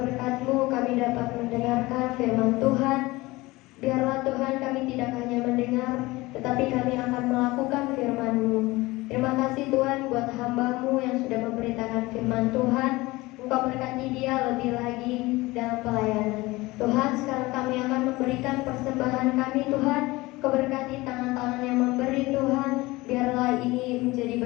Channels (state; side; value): quieter; right; 20.9 dB